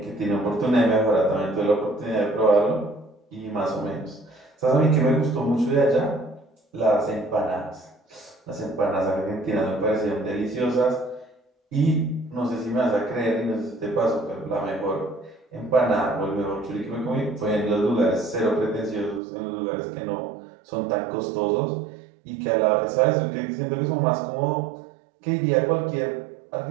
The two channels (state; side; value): drops out; left; at 19.2 s